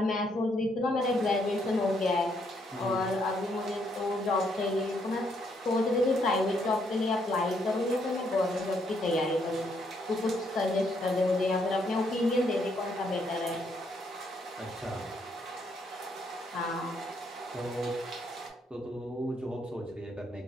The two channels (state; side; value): normal; both; correlation 0.73